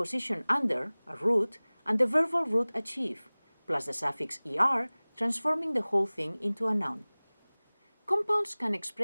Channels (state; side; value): inverted; both; correlation -1.00